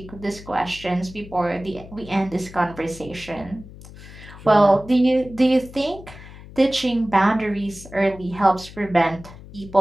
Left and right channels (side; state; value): left; noise; hum, 17 dB below the sound